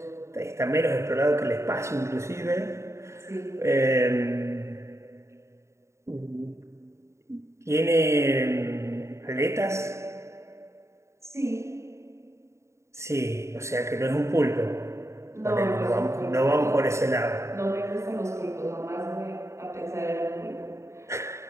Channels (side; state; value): left; late; 0.14 ms